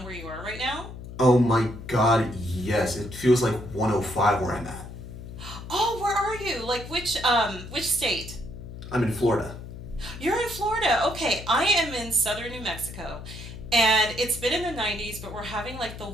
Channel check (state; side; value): noise; left; hum, 12 dB below the sound